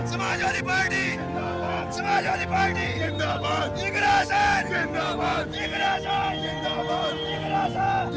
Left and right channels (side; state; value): both; identical; correlation 1.00